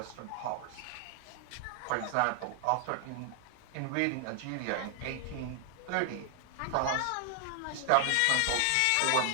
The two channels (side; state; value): both; different; correlation 0.00